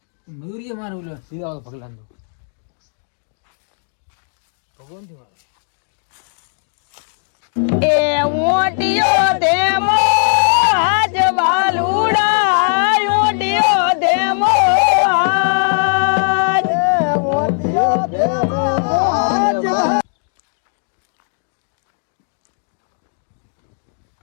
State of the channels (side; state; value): right; silent; digital silence